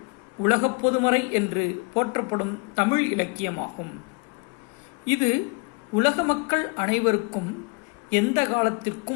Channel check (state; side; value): quieter; right; 31.4 dB